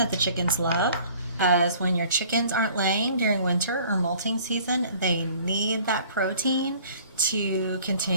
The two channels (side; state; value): both; inverted; correlation -0.52